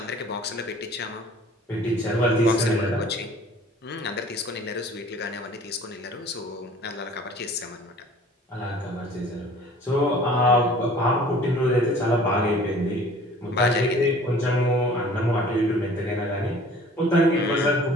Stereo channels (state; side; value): normal; both; correlation 0.49